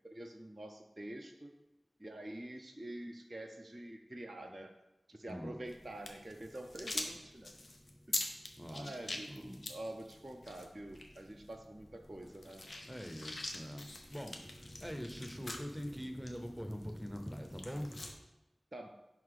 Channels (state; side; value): normal; both; correlation 0.96